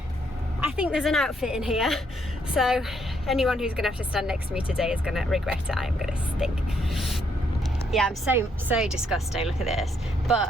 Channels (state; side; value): normal; both; correlation 0.73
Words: I think there's an outfit in here. So anyone who's gonna have to stand next to me today is gonna regret it. I am gonna stink. Yeah, I'm so disgusting, look at this.